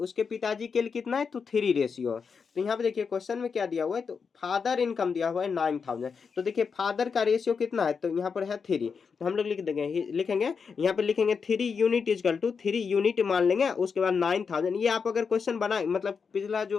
पिताजी के लिए कितना है, तो 3 रेशियो। तो यहाँ पे देखिए क्वेश्चन में क्या दिया हुआ है, तो फादर इनकम दिया हुआ है 9000, तो देखिए फादर का रेशियो कितना है, तो यहाँ पर है 3, तो हम लोग लिखेंगे यहाँ पे लिखेंगे 3 यूनिट इजकल टू 3 यूनिट मान लेंगे, उसके बाद 9000। ये आप अगर क्वेश्चन बनाए मतलब पिछला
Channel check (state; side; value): quieter; right; 5.7 dB